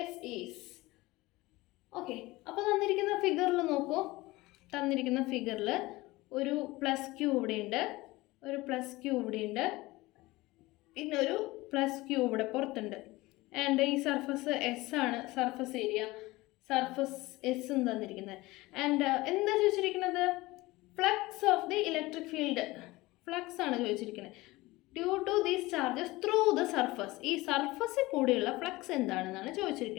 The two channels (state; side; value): quieter; right; 20.3 dB